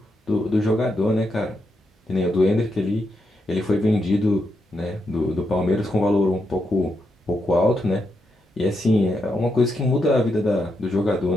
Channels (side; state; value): both; normal; correlation 0.82